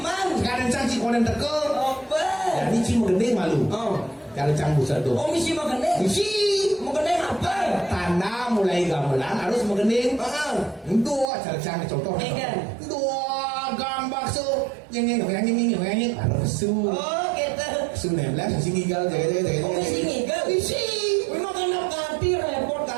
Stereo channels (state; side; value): drops out; left; at 11.2 s